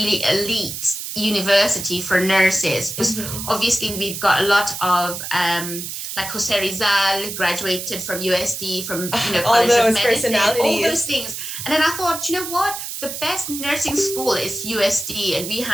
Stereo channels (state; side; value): noise; right; hiss, 7 dB below the sound